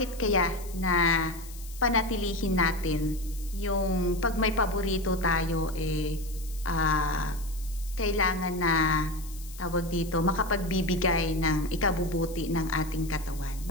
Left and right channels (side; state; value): left; noise; hiss, 17 dB below the sound